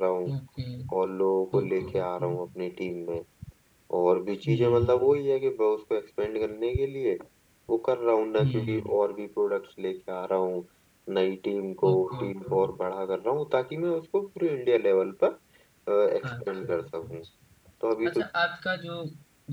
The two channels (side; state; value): both; identical; correlation 1.00